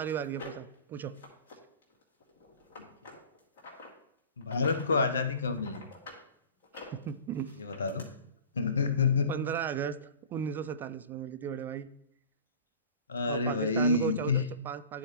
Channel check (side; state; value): both; inverted; correlation -0.42